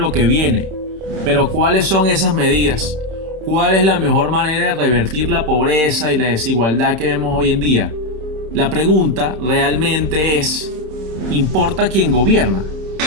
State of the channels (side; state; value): left; late; 26 ms